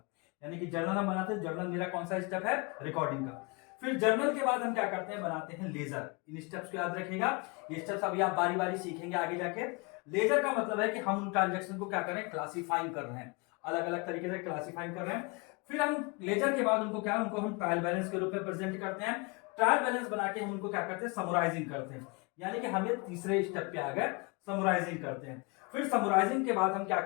यानी कि जर्नल हम बनाते हैं। जर्नल मेरा कौन सा स्टेप है? रिकॉर्डिंग का। फिर जर्नल के बाद हम क्या करते हैं? बनाते हैं लेजर। इन स्टेप्स को याद रखिएगा, ये स्टेप्स अभी आप बारी बारी सीखेंगे आगे जाके। लेजर का मतलब है कि हम उन ट्रांजैक्शन को क्या कर रहे हैं? क्लासिफाइंग कर रहे हैं, अलग अलग तरीके से क्लासिफाइंग कर रहे हैं। फिर हम लेजर के बाद उनको क्या, उनको हम ट्रायल बैलेंस के रूप में प्रेजेंट करते हैं। ट्रायल बैलेंस बना के हम उनको क्या करते हैं? समराइजिंग करते हैं, यानी कि हम ये तीसरे स्टेप पे आ गए, समराइजिंग करते हैं। फिर समराइजिंग के बाद हम क्या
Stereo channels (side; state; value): right; quieter; 29.2 dB